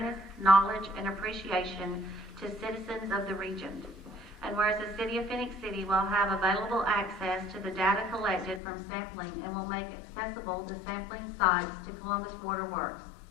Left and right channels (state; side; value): drops out; right; at 8.6 s